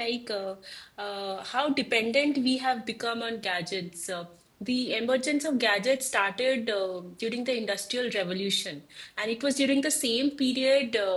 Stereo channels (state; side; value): identical; both; correlation 1.00